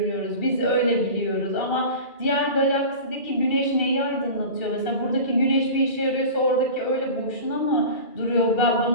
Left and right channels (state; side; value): late; right; 2.3 ms